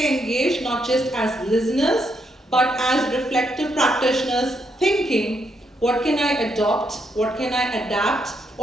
engaged, not just as listeners, but as reflective practitioners thinking, what can I adopt, what can I adapt,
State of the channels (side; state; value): both; normal; correlation 0.78